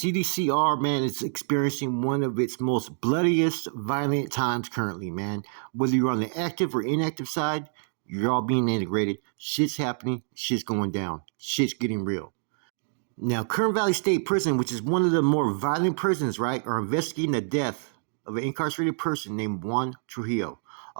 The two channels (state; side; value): silent; left; digital silence